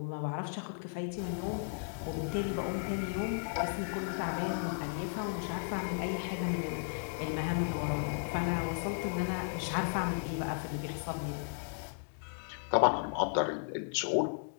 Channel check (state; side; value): silent; right; digital silence